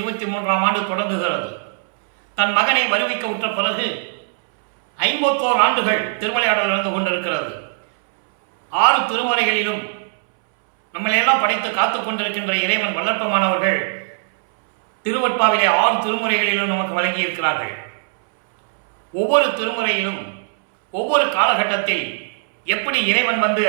ஆண்டு தொடங்குகிறது. தன் மகனை வருவிக்க உற்ற பிறகு 51 ஆண்டுகள் திருவிளையாடல் நடந்து கொண்டிருக்கிறது. 6 திருமுறைகளிலும் நம்மளையெல்லாம் படைத்து காத்து கொண்டிருக்கின்ற இறைவன் வல்லற்பமானவர்கள் திருவட்பாவிலே 6 திருமுறைகளிலும் நமக்கு வழங்கியிருக்கிறார்கள். ஒவ்வொரு திருமுறையிலும் ஒவ்வொரு காலகட்டத்தில் எப்படி இறைவன் வந்து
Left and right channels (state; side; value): silent; left; 66 dB below the other